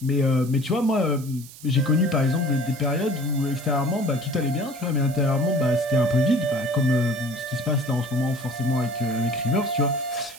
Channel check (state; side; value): noise; right; hiss, 18 dB below the sound